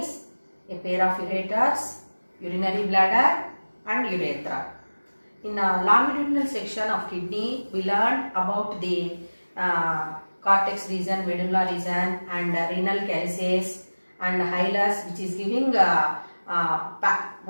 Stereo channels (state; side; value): inverted; both; correlation -1.00